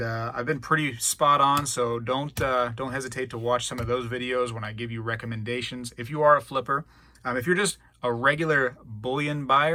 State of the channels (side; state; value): both; identical; correlation 1.00